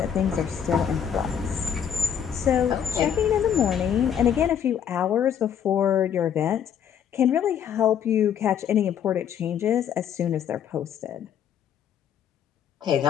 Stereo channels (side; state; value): right; quieter; 8.6 dB